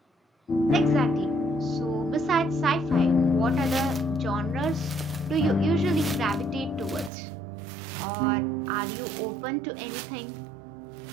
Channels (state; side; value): drops out; left; at 7.1 s